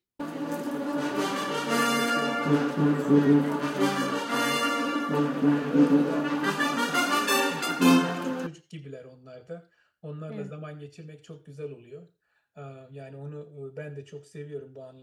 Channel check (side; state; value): both; identical; correlation 1.00